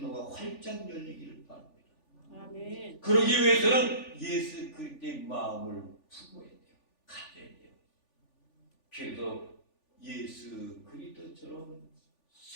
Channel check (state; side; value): late; right; 3.4 ms